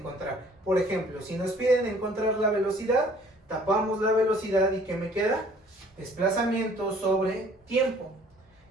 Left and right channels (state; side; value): normal; both; correlation 0.55